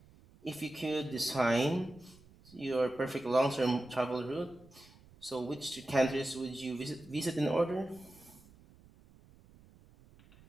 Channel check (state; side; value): noise; right; rumble, 25 dB below the sound